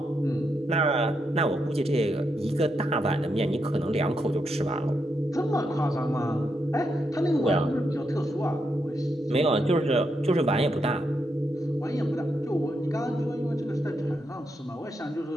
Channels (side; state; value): both; normal; correlation 0.82